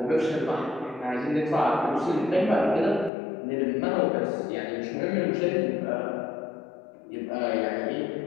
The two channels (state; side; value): drops out; right; at 3.1 s